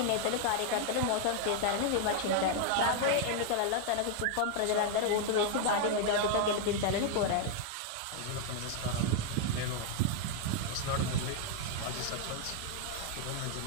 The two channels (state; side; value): different; both; correlation 0.00